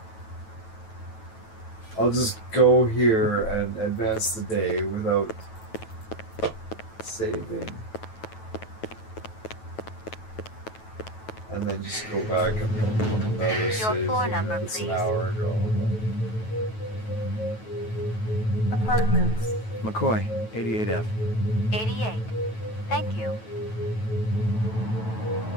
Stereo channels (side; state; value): right; late; 9.2 ms